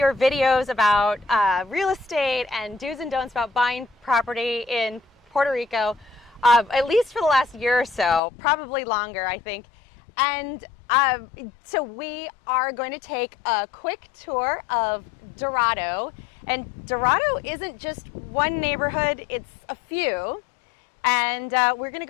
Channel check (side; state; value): right; drops out; at 8.2 s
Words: videos about real estate and do's and don'ts about buying property in Puerto Rico, at least for the last year or so, probably longer, I think. And so we are going to take a quick tour of Dorado. And Dorado isn't just one neighborhood, it's a few. And we're gonna